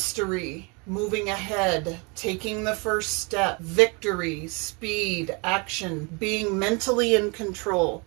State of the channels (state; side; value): quieter; left; 30.7 dB